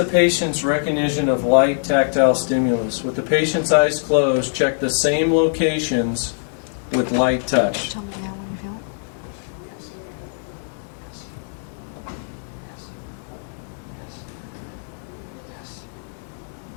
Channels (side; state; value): right; silent; digital silence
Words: patient's recognition of light tactile stimulus. With the patient's eyes closed, check the same locations with light touch. Tell me now when you feel it.